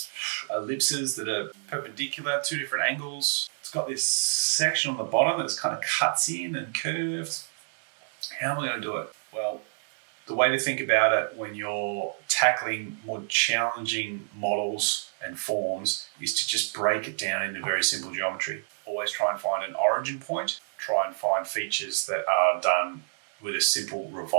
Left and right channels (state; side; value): silent; left; digital silence